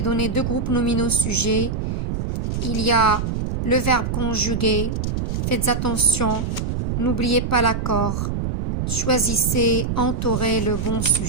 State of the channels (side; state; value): right; noise; rumble, 2 dB below the sound